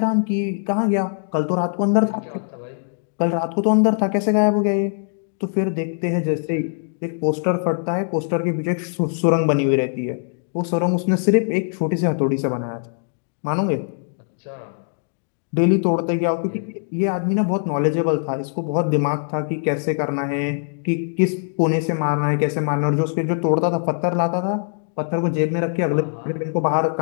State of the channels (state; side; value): silent; right; digital silence